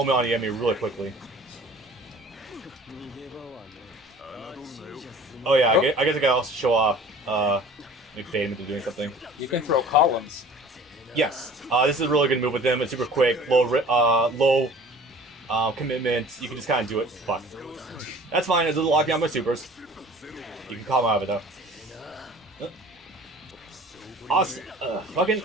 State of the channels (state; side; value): normal; both; correlation 0.47